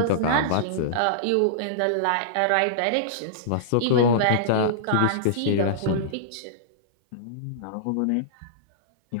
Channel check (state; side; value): different; both; correlation -0.03